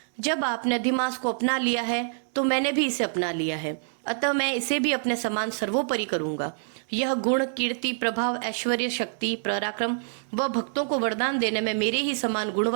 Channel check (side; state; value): left; silent; digital silence